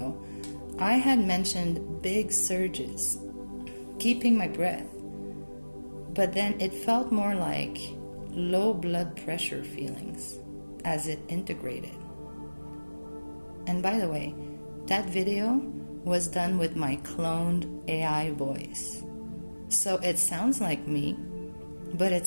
I had mentioned big surges, keeping my breath, but then it felt more like low blood pressure feelings as it integrated. And by the way, that video was done with my cloned AI voice. So it sounds like me, but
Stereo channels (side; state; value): both; inverted; correlation -1.00